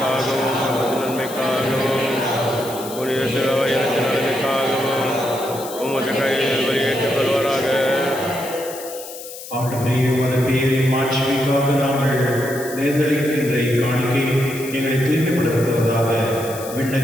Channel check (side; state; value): left; noise; hiss, 13 dB below the sound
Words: நமது நன்மைக்காகவும் புனித திருவயத்தின் நலனுக்காகவும் உமது கையில் வெளியேற்றுக் கொள்வாராக. ஆண்டவரே, உமது பெயரின் மாட்சிமைக்காக நாங்கள் நேர்ந்தளிக்கின்ற காணிக்கை எங்களை தூய்மைப்படுத்துவதாக.